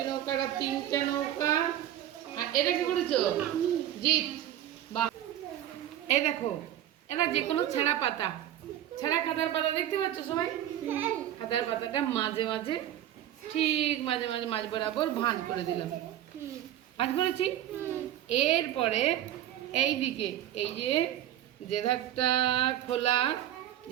নৌকাটা তিনটা নৌকা। আর এটা কি করেছো? জিত। বাহ, এই দেখো, এটা যে কোনো ছেঁড়া পাতা, ছেঁড়া খাতার পাতা দেখতে পাচ্ছ সবাই? খাতার পাতাটা মাঝে মাঝে, ঠিক মাঝে মাঝে মাঝ বরাবর ভাঁজ করে দিলাম। ভাঁজ করেছি। এরপরে এই দিকে এই যে ধারটা খোলা,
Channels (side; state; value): left; quieter; 12.1 dB